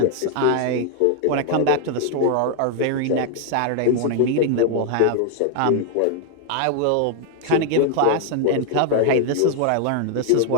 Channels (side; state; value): both; different; correlation 0.00